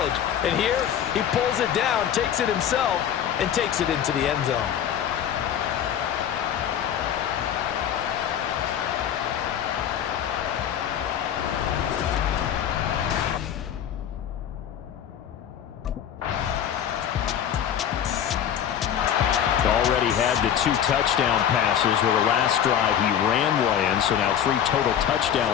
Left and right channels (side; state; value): right; quieter; 9.5 dB